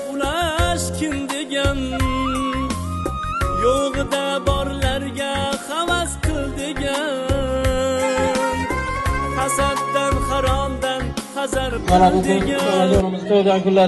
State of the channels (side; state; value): both; identical; correlation 1.00